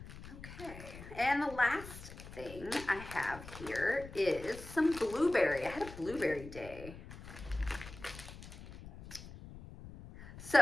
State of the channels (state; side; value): noise; left; rumble, 14 dB below the sound